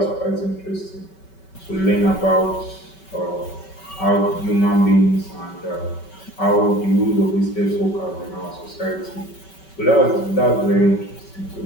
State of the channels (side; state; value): right; late; 5.3 ms